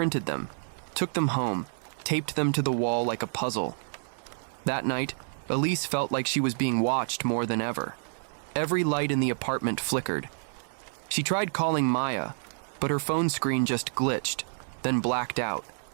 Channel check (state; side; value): silent; left; 59 dB below the other